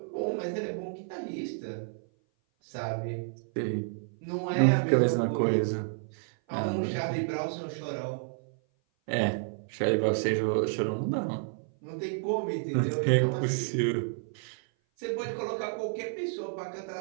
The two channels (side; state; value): left; silent; 56 dB below the other